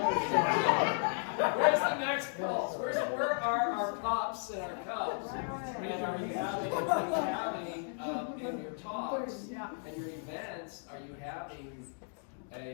the next pulse? Where are our pups and our cubs? Right. And are you having in your talks Yeah. and your events, are you having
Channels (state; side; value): silent; right; 55 dB below the other